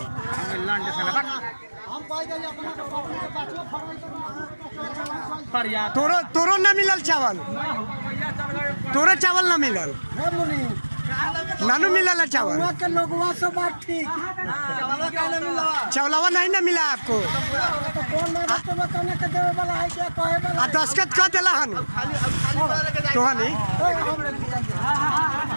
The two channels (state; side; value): inverted; both; correlation -1.00